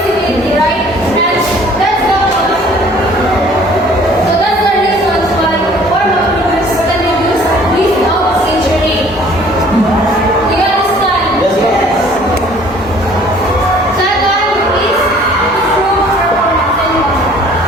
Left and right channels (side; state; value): both; normal; correlation 0.54